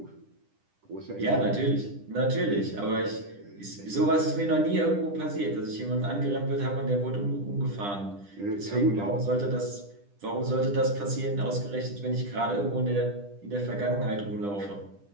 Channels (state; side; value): late; left; 10 ms